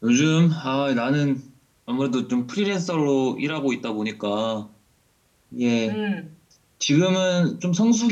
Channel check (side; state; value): both; identical; correlation 1.00